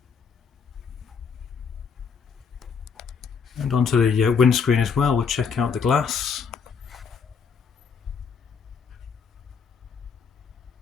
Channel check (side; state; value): right; quieter; 6.0 dB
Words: And onto the windscreen as well. We'll check out the glass.